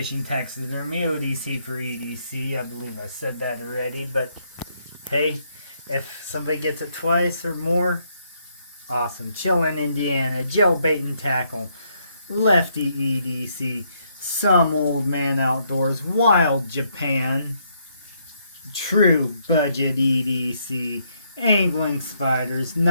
Taxidermy, ODC for EDC. I believe I said that already, but hey, if somebody gets it twice or more, awesome. Chillin', Indiana, Joe Bait and Tackle, Lefty EDC, Some Old Man Outdoors, Wild Japan, True Budget EDC, Angling Spiders,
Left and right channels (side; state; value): both; inverted; correlation -0.73